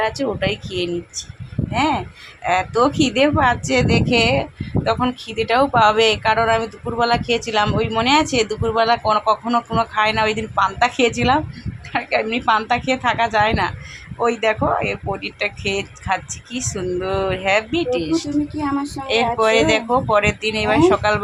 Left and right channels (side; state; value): both; identical; correlation 1.00